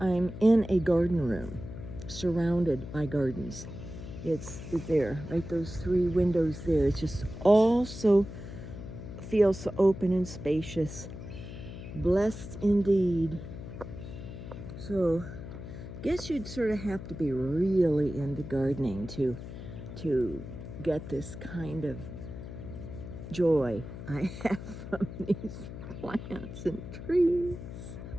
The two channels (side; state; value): left; noise; hum, 11 dB below the sound